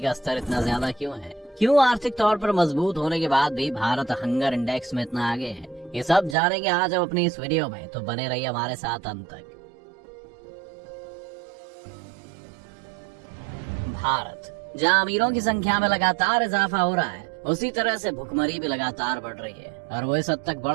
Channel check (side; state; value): left; drops out; at 6.4 s